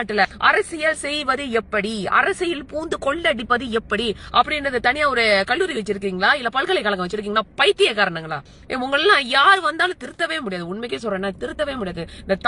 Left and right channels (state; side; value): identical; both; correlation 1.00